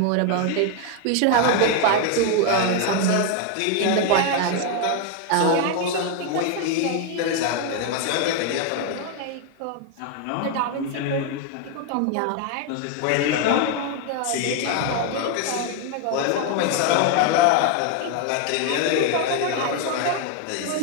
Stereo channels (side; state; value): both; different; correlation 0.01